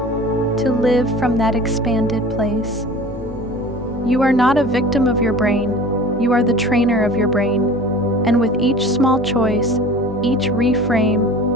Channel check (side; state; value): both; normal; correlation 0.41